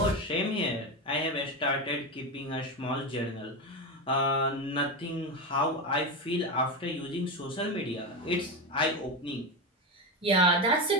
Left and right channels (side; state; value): both; normal; correlation 0.16